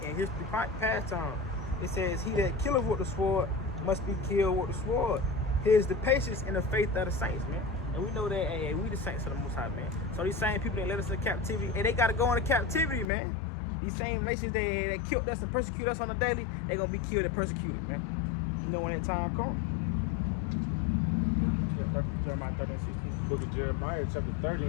history past time. It says, he that killeth with the sword must be killed with the sword. Here's the patience and the faith of the saints, man. And we know that, we the saints of the Most High, man. So these same people that led us into captivity, and they got to go into captivity, man. These same nations that killed us and persecute us on a daily, they're going to be killed and persecuted, man. You know when that time comes. Jeremiah 13:16. Book of Jeremiah, chapter 30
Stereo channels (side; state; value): right; drops out; at 13.1 s